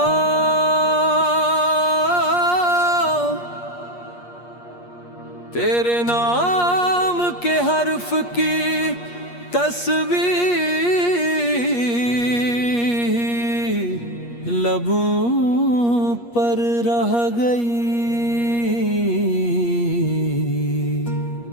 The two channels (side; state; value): right; late; 8.4 ms